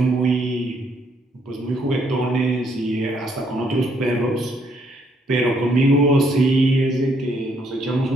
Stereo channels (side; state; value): both; normal; correlation 0.70